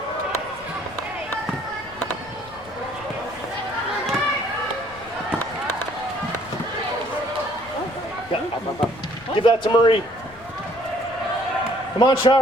Give that to Marie. Come on,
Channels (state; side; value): noise; left; rumble, 21 dB below the sound